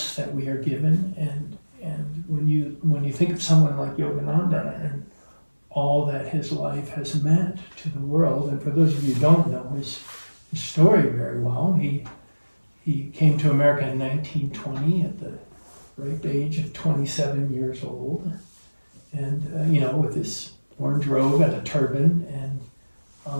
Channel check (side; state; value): both; inverted; correlation -1.00